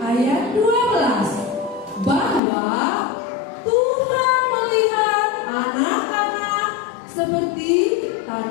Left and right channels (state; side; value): drops out; right; at 2.4 s